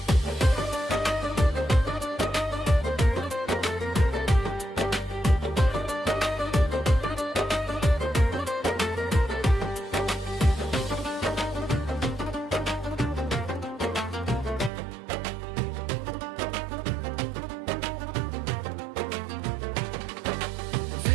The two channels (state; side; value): drops out; left; at 14.7 s